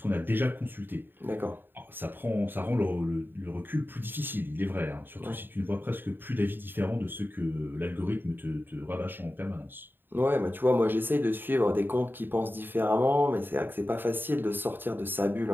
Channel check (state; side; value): late; left; 0.095 ms